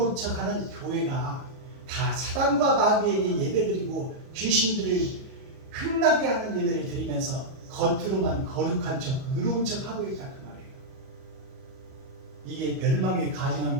척 하는 교회가 다 사탄과 마귀에게 예배드리고 귀신들을 흥나게 하는 예배를 드리면서 겉으로만 거룩한 척 의로운 척 하고 있다 그 말이에요. 이게 멸망에 가증한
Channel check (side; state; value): left; late; 38 ms